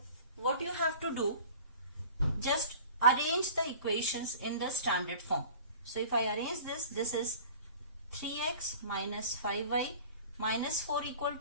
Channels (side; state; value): both; inverted; correlation -0.42